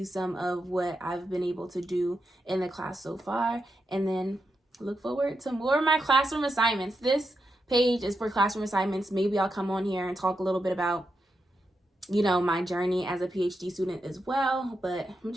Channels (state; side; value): normal; both; correlation 0.85